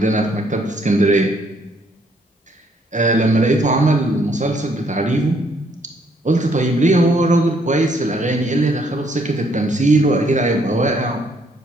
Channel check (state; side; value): normal; both; correlation 0.68